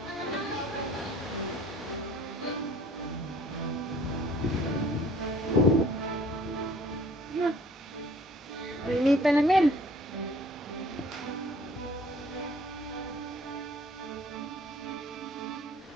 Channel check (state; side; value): normal; both; correlation 0.54